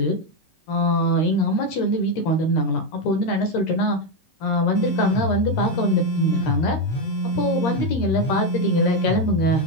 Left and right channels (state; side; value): late; right; 13 ms